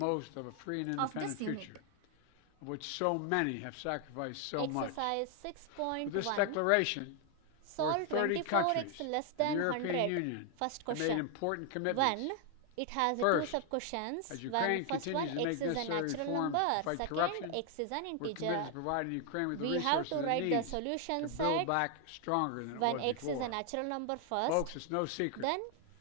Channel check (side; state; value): both; different; correlation 0.00